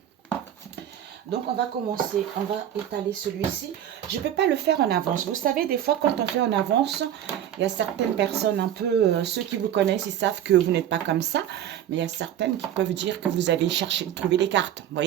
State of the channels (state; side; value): quieter; left; 10.7 dB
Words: Donc, on va commencer, on va étaler celui-ci. Je ne peux pas le faire en avance. Vous savez, des fois, quand on fait en avance, il y a certaines personnes un peu, ceux qui vous connaissent, ils savent que vous n'êtes pas comme ça. Mais il y a certaines qui peuvent dire que vous avez cherché, trouvé les cartes. Vous